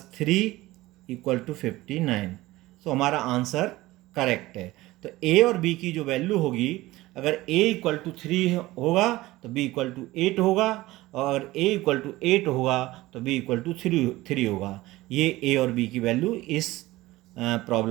3 equal to 59। तो हमारा आंसर करेक्ट है। तो a और b की जो वैल्यू होगी अगर a इक्वल टू 3 होगा तो b इक्वल टू 8 होगा, और अगर a इक्वल टू 8 होगा तो b इक्वल टू 3 होगा। ये a और b की वैल्यू इस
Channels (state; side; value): quieter; left; 18.3 dB